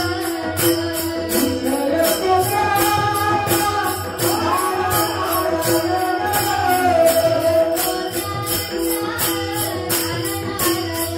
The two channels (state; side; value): identical; both; correlation 1.00